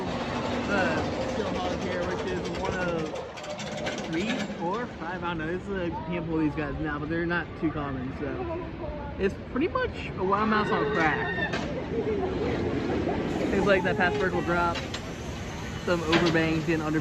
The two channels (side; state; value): both; identical; correlation 1.00